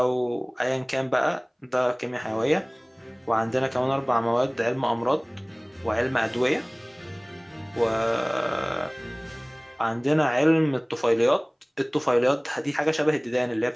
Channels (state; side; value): identical; both; correlation 1.00